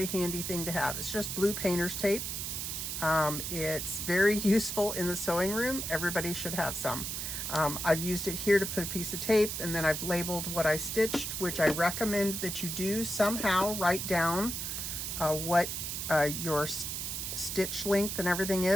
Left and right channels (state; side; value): noise; right; hiss, 4 dB below the sound